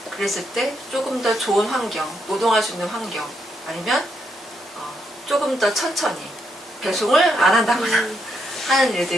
그랬을 때 조금 더 좋은 환경, 노동할 수 있는 환경 아니면 조금 더 천천히 배송을 안 한다거나 하는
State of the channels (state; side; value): normal; both; correlation 0.79